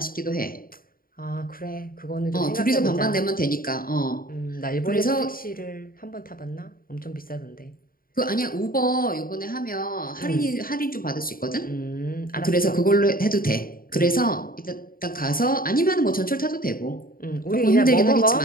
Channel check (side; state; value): right; late; 0.42 ms